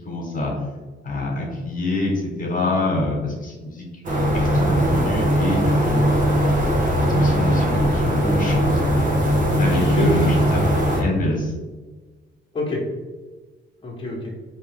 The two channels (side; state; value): both; normal; correlation 0.66